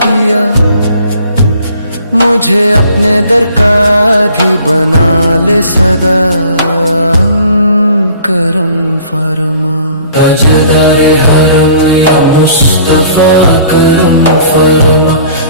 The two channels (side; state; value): both; inverted; correlation -0.52